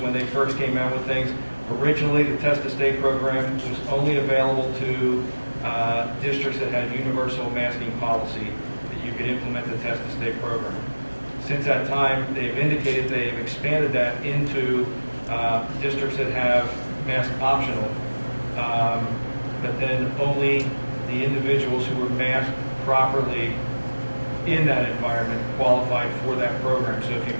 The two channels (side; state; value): both; inverted; correlation -1.00